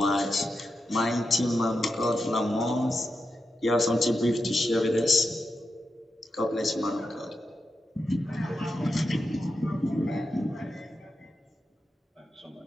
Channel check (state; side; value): normal; both; correlation 0.88